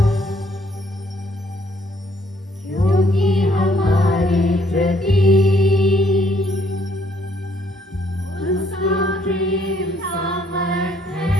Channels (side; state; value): both; normal; correlation 0.66